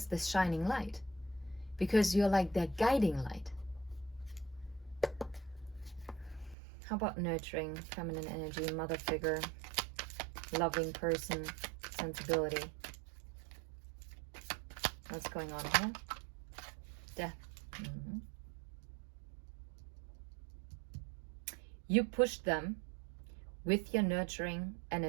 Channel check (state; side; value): drops out; left; at 6.6 s